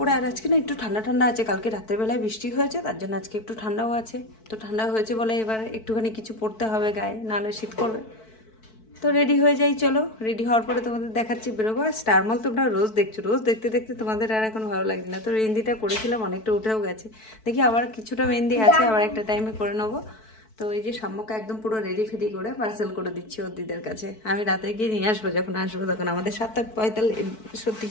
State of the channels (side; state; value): right; late; 4.6 ms